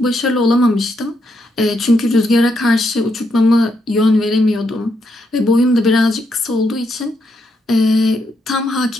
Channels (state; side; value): normal; both; correlation 0.79